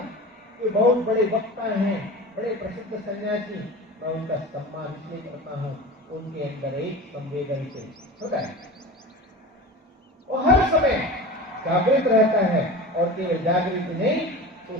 कि बहुत बड़े वक्ता हैं, बड़े प्रसिद्ध सन्यासी, मैं उनका सम्मान इसलिए करता हूँ, उनके अंदर एक संवेदनशील होता है, वो हर समय जागृत रहता है, और केवल जागृत नहीं तो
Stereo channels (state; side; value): normal; both; correlation 0.32